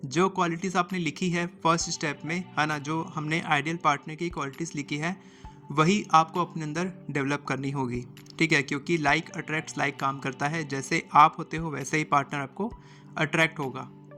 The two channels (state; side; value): identical; both; correlation 1.00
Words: जो क्वालिटीज़ आपने लिखी है फर्स्ट स्टेप में, है ना, जो हमने आइडियल पार्टनर की क्वालिटीज़ लिखी है, वही आपको अपने अंदर डेवलप करनी होगी। ठीक है, क्योंकि लाइक अट्रैक्ट्स लाइक काम करता है, जैसे आप होते हो वैसे ही पार्टनर आपको अट्रैक्ट होगा।